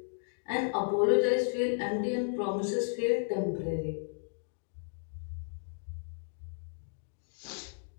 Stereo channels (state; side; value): silent; right; digital silence